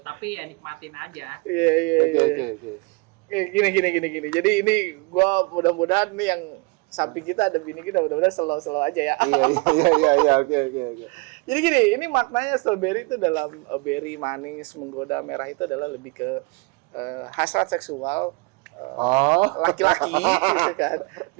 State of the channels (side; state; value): left; quieter; 27.7 dB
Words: tapi ya nikmatin aja. Iya. Oke. Gini. Jadi ini gua mudah-mudahan nih yang samping kita ada bini kita, mudah-mudahan slow aja ya. Iya. Oke. Jadi gini, ini maknanya strawberry itu dalam berry manis menggoda merah itu adalah lebih ke hasrat seksual laki-laki gitu kan.